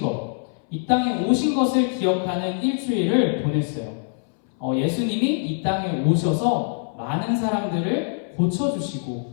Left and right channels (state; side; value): silent; right; 61 dB below the other